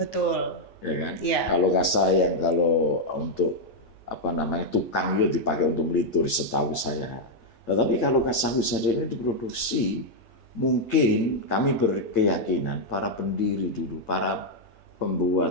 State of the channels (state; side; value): late; right; 8.9 ms